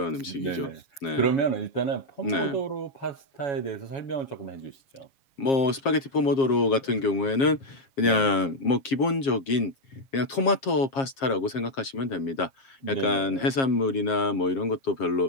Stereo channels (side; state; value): right; late; 7.4 ms